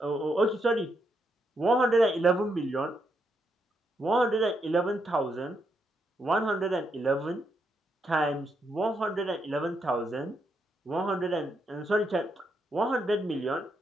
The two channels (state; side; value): normal; both; correlation 0.79